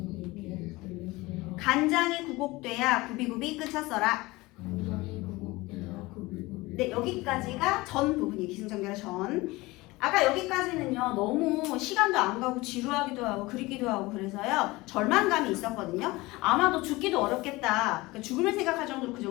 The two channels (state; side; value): quieter; right; 21.2 dB